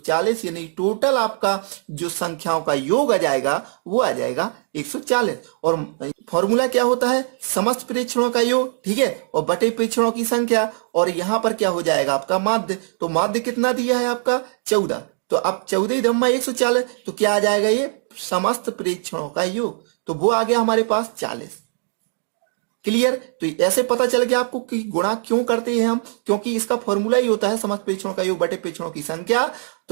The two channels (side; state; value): left; silent; digital silence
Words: यानी टोटल आपका जो संख्याओं का योग आ जाएगा वो आ जाएगा 140। और फॉर्मूला क्या होता है समस्त प्रेक्षणों का योग, ठीक है, और बटे प्रेक्षणों की संख्या, और यहाँ पर क्या हो जाएगा आपका माध्य। तो माध्य कितना दिया है आपका 14, तो अब 14 धम्मा 140, तो क्या आ जाएगा ये समस्त प्रेक्षणों का योग, तो वो आ गया हमारे पास 40। क्लियर। तो ऐसे पता चल गया आपको कि गुणा क्यों करते हैं हम, क्योंकि इसका फॉर्मूला ही होता है समस्त प्रेक्षणों का योग बटे प्रेक्षणों की संख्या।